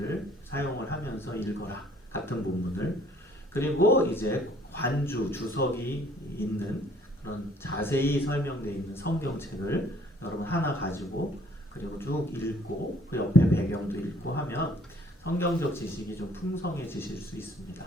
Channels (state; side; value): normal; both; correlation 0.59